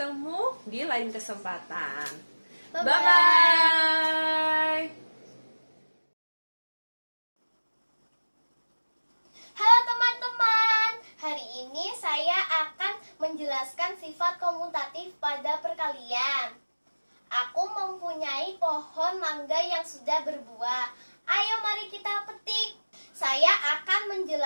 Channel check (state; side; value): inverted; both; correlation -1.00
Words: di lain kesempatan. Bye-bye. Halo teman-teman, hari ini saya akan menjelaskan sifat komutatif pada perkalian. Aku mempunyai pohon mangga yang sudah berbuah. Ayo mari kita petik. Saya akan